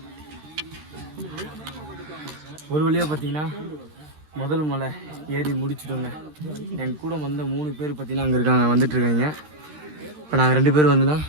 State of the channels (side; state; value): left; late; 13 ms